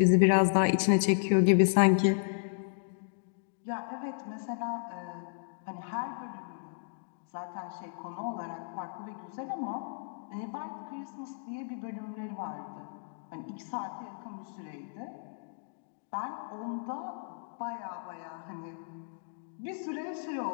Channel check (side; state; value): right; silent; digital silence